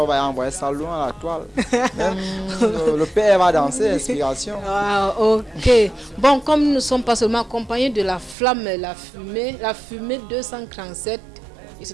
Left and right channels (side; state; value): left; drops out; at 8.3 s